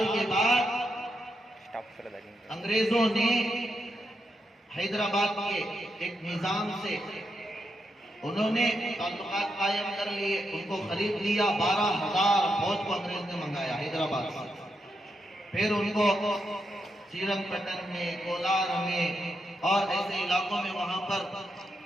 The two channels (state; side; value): normal; both; correlation 0.84